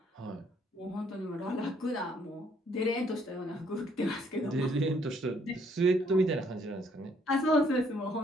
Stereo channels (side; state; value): both; normal; correlation 0.67